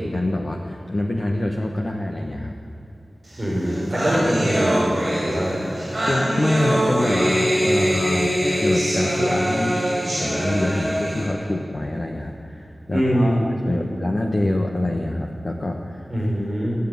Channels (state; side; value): normal; both; correlation 0.97